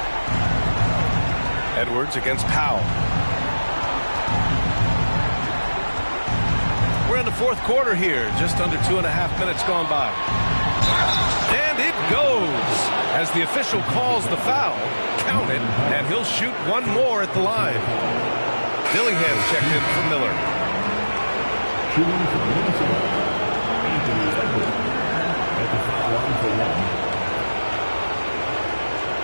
Edwards against Powell. We're in the fourth quarter here. Just under 2.5 minutes gone by. And it goes as the official calls the foul. Count it, and he'll shoot one more at the line. Dillingham checked in for Miller. Shooting for Minnesota, Anthony Edwards at the foul line for 1.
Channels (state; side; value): inverted; both; correlation -1.00